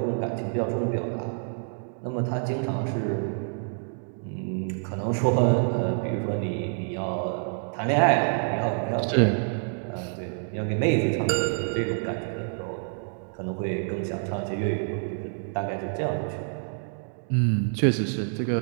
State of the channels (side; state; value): left; silent; 60 dB below the other